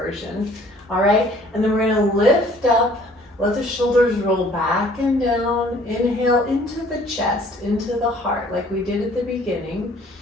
All right, and then we're gonna lift up, let the shoulders roll back and down. Inhale into the chest, into the heart, like we did at the beginning.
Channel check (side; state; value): both; normal; correlation 0.56